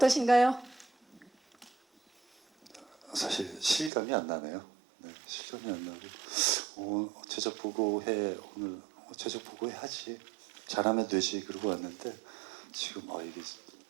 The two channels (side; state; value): left; drops out; at 3.9 s